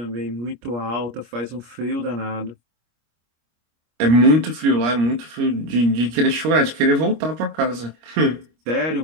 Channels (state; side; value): late; left; 25 ms